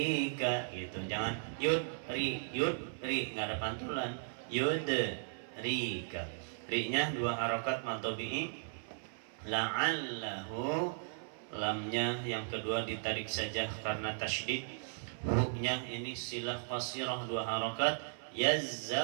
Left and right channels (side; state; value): left; silent; 53 dB below the other